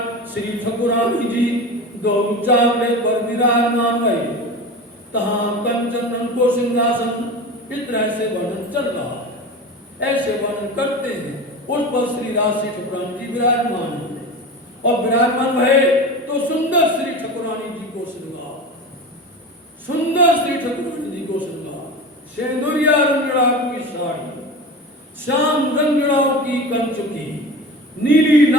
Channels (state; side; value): normal; both; correlation 0.30